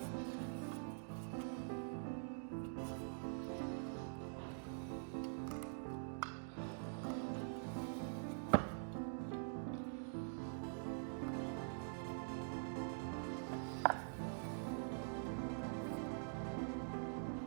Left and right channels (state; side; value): silent; left; digital silence